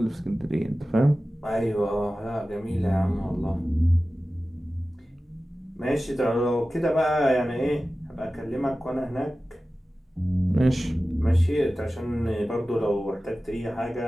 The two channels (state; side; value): normal; both; correlation 0.95